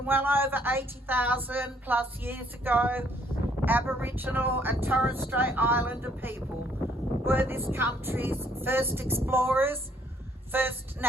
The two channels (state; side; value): normal; both; correlation 0.66